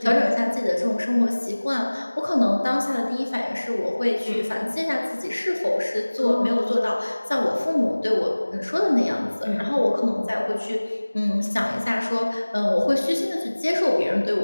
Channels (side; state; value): both; inverted; correlation -1.00